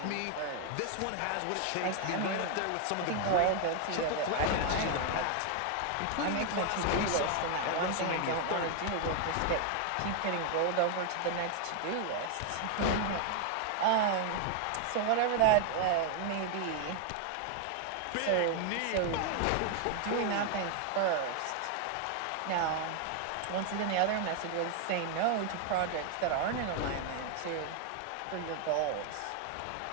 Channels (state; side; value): different; both; correlation 0.00